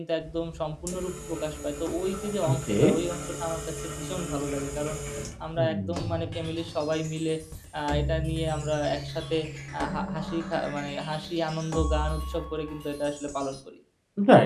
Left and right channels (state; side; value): identical; both; correlation 1.00